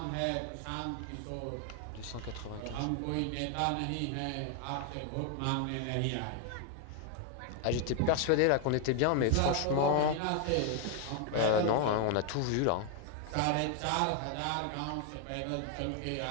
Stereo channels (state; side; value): different; both; correlation 0.00